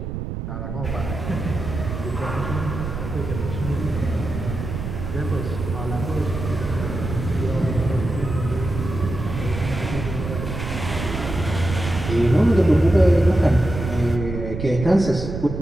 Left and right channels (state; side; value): noise; right; rumble, 6 dB below the sound